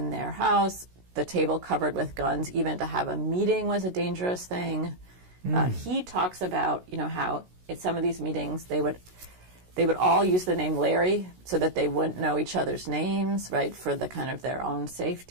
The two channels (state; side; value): late; left; 16 ms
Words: their house, the table covered with guns. Even to have a meeting was a dangerous thing. He talks about, how at some of these meetings they would all use the name Larry so that they wouldn't know each other's names, right, for the kind of their own